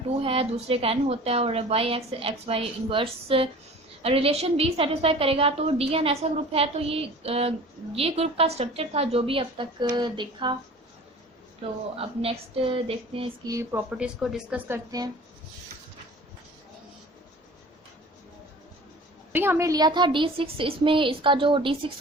2 है, दूसरे का n होता है, और y x y inverse relation भी सेटिस्फाई करेगा। तो डी एन ऐसा ग्रुप है। तो ये ग्रुप का स्ट्रक्चर था जो भी अब तक देखा। तो अब नेक्स्ट देखते हैं, इसकी प्रॉपर्टीज़ को डिस्कस करते हैं। अभी हमने लिया था D6, इसमें इसका जो D6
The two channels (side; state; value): both; normal; correlation 0.43